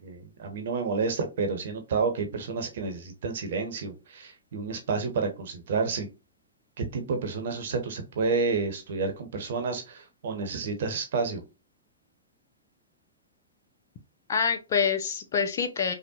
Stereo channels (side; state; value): both; inverted; correlation -0.35